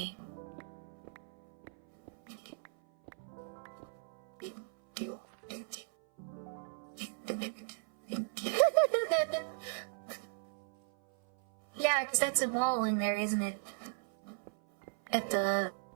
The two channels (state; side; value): silent; left; 54 dB below the other